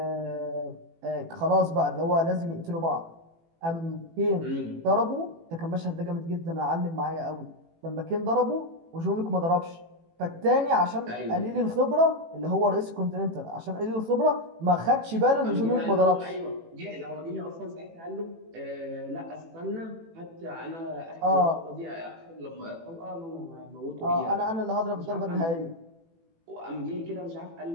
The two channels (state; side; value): late; left; 18 ms